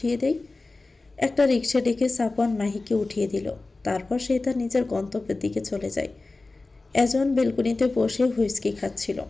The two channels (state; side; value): quieter; right; 3.4 dB